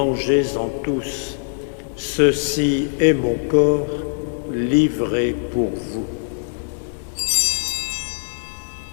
tous. Ceci est mon corps livré pour vous. »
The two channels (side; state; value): right; silent; digital silence